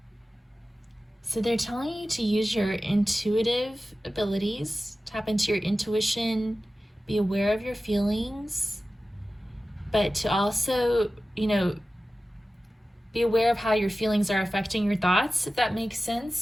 So they're telling you to use your intuitive abilities, tap into your intuition, be aware of your feelings, but to also, be aware of how your feelings are affecting your thoughts, if that makes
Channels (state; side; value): normal; both; correlation 0.95